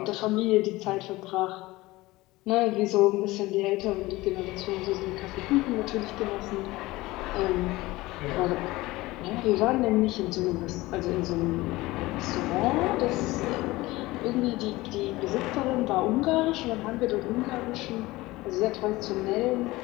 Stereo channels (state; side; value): quieter; right; 19.6 dB